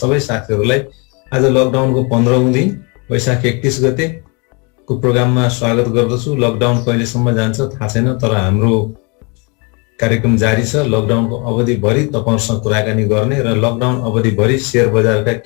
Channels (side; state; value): right; quieter; 31.3 dB